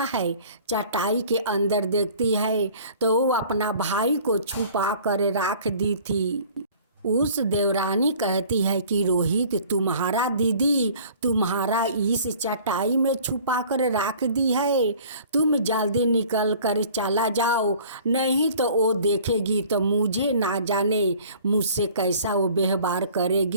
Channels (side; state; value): both; inverted; correlation -0.50